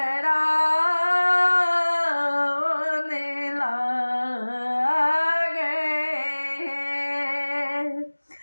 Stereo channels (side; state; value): both; inverted; correlation -1.00